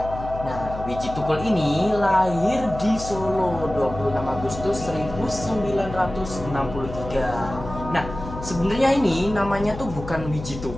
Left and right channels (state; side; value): noise; left; hum, 10 dB below the sound